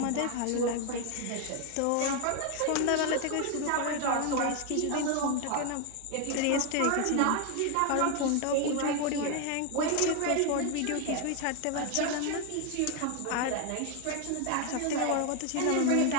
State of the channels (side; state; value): both; different; correlation 0.01